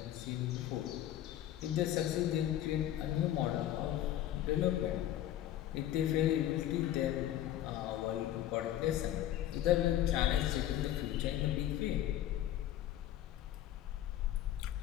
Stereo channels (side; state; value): right; quieter; 12.4 dB